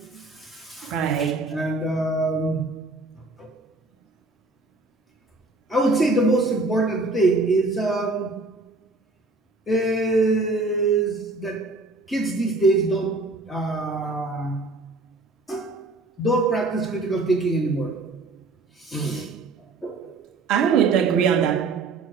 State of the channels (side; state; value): left; quieter; 3.4 dB